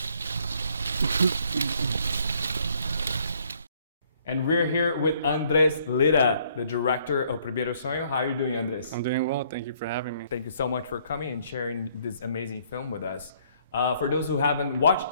And we're here with Andrés Lira, the director of Primeiro Sueño. How are you doing, Andrés? I'm doing well. Thank you for having me. Thank you so much for coming and sharing this amazing film with us. For those who haven't watched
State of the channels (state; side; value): inverted; both; correlation -0.65